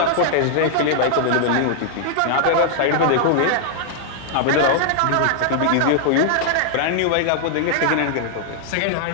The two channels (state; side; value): different; both; correlation -0.01